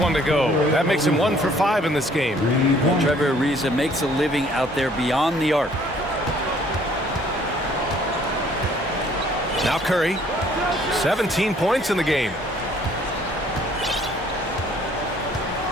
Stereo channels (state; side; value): normal; both; correlation 0.59